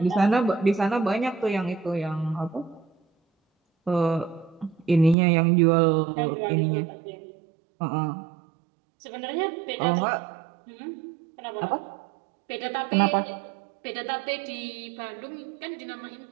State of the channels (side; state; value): left; drops out; at 5.2 s